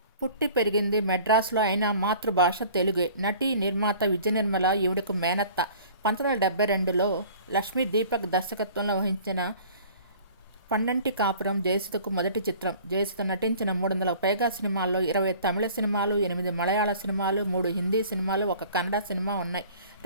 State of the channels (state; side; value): inverted; both; correlation -0.48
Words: పుట్టి పెరిగింది మెడ్రాస్లో అయినా మాతృభాష తెలుగే. నటి, నిర్మాత విజయనిర్మల ఈవిడకు మేనత్త. 1972లో లక్ష్మీ దీపక్ దర్శకత్వంలో వహించిన పండంటి కాపురం జయసుధకు మొదటి చిత్రం. జయసుధ నటించిన 300కు పైగా సినిమాల్లో 20 తమిళ సినిమాలు, 8 మలయాళ సినిమాలు, 3 హిందీ సినిమాలు, 1 కన్నడ సినిమా ఉన్నాయి.